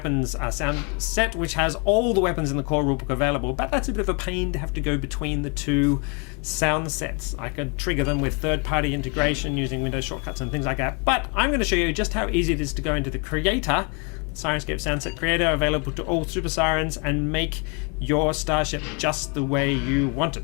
sound set, which has all the weapons in the core rulebook available, but that's a bit of a pain to have to go between the two sound sets. I could trigger them with third-party integration using Windows shortcuts and things like that, but I'm going to show you just how easy it is to go into the Creator, Syrinscape SoundSet Creator, available to all Super Sirens, and make your starship just the way you want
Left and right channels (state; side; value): quieter; right; 34.3 dB